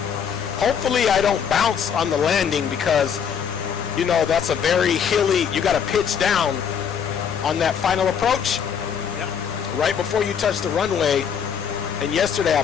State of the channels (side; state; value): right; quieter; 7.5 dB